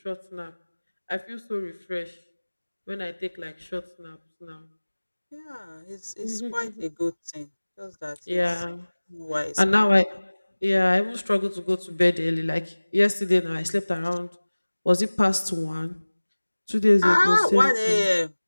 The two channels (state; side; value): inverted; both; correlation -1.00